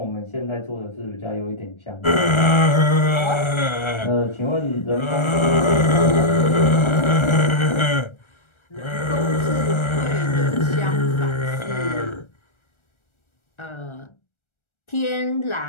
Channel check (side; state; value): right; late; 1.4 ms